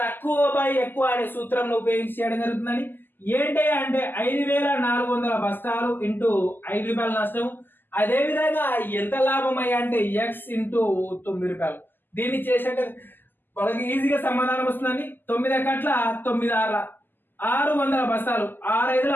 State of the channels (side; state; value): right; late; 0.092 ms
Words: బై ఎక్కువ అనే సూత్రం ఉపయోగించి చేయడం జరుగుతుందని. ఏంటి అంటే 5,400 బస్తాలు ఇంటూ 5 రూపాయల నష్టం. అదే విధంగా ఎంత లాభం అయ్యా అంటే ఎక్స్ ఇంటూ 9 రూపాయలు. దీన్ని చేసినట్టు వాళ్ళకి ఈజీగా సమాధానం వస్తుందండి. 9 కట్ల 9 6 600 బస్తాలు,